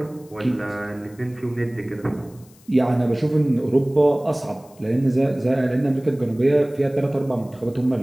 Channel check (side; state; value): left; noise; hiss, 28 dB below the sound